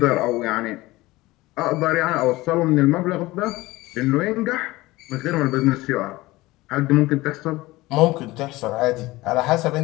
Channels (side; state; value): right; quieter; 19.5 dB